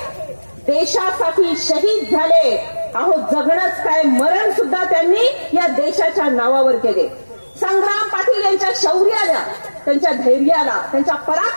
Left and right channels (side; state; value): both; inverted; correlation -1.00